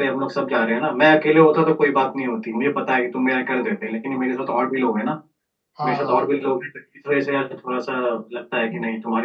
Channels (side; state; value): both; identical; correlation 1.00